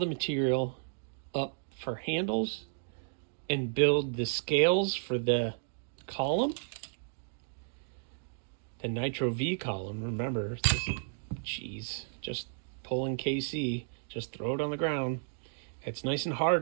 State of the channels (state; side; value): silent; left; digital silence